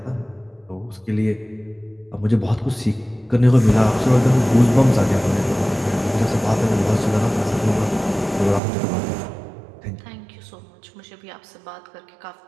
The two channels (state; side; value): drops out; left; at 8.6 s